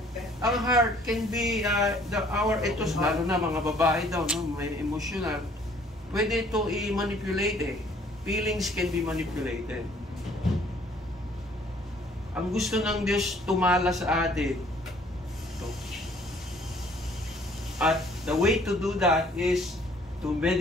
ang heart can be, ito, lalo na mga babae daw, no? May emotional. Pwede ito i-manipulate eh. Feelings can be manipulated. Ang gusto ng Diyos tumala sa atin. Ito. At the way to do that is to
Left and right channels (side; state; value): both; normal; correlation 0.58